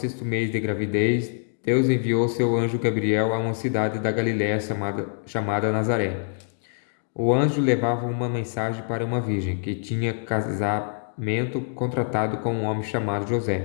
mês de gravidez, Deus enviou seu anjo Gabriel a uma cidade da Galiléia chamada Nazaré. O anjo levava uma mensagem para uma virgem que tinha casamento contratado com um homem chamado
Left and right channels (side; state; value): right; silent; digital silence